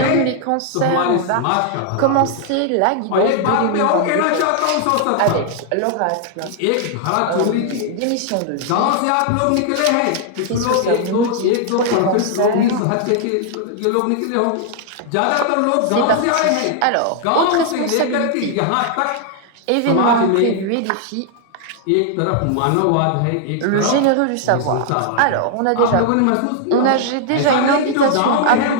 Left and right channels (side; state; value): both; different; correlation 0.00